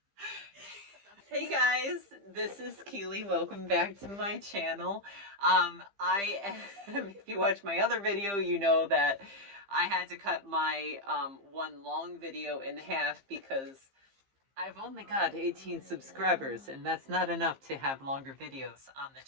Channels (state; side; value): late; left; 15 ms